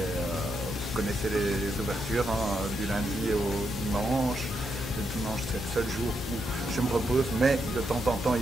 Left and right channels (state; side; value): noise; left; hum, 9 dB below the sound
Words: connaissez les ouvertures, hein, du lundi au dimanche. Le dimanche, c'est le seul jour où je me repose, mais de temps en temps,